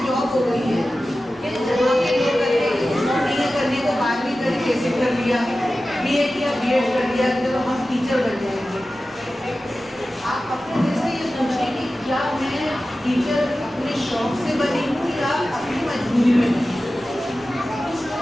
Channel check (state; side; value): normal; both; correlation 0.95